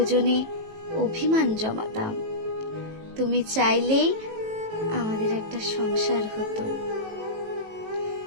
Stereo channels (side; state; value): left; late; 18 ms